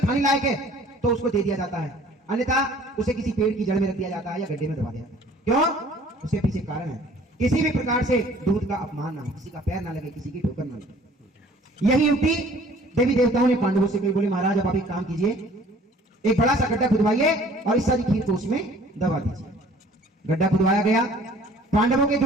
लायक है तो उसको दे दिया जाता है, अन्यथा उसे किसी पेड़ की जड़ में रख दिया जाता है या गड्ढे में दबा दिया जाता है। क्यों? उसके पीछे कारण है, किसी भी प्रकार से दूध का अपमान ना हो, किसी का पैर ना लगे, किसी की ठोकर ना लगे। यही युक्ति देवी देवताओं ने पांडवों से कही। बोले महाराज अब आप एक काम कीजिए, एक बड़ा सा गड्ढा खुदवाइए और इस सारी खीर को उसमें दबा दीजिए। गड्ढा खुदवाया गया। पांडवों के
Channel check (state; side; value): normal; both; correlation 0.53